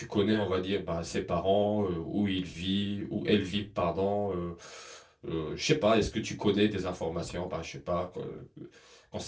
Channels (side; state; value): both; identical; correlation 1.00